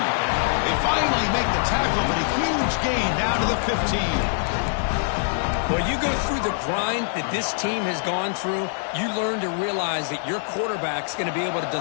They finally make the tackle, but a huge gain down to the 15. Well, you go through the grind that this team has gone through, you learn to realize that your quarterback's going to be able to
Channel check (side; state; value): right; silent; 59 dB below the other